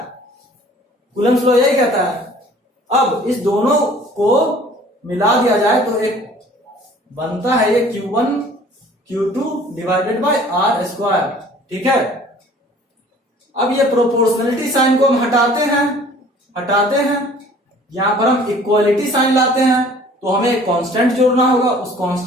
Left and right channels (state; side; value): normal; both; correlation 0.51